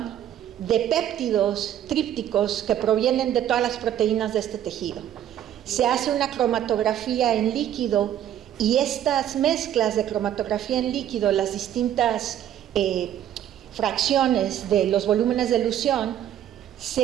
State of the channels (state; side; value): quieter; left; 11.0 dB